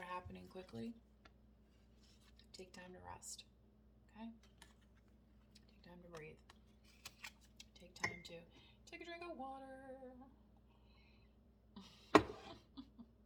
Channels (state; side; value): identical; both; correlation 1.00